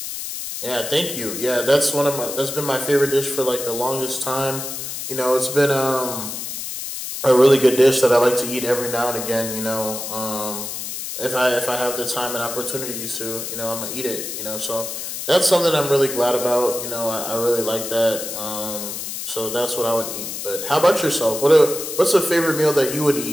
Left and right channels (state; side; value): noise; left; hiss, 6 dB below the sound